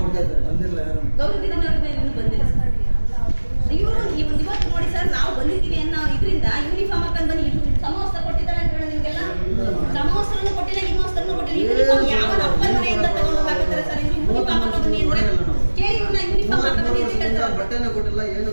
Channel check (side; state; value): both; inverted; correlation -1.00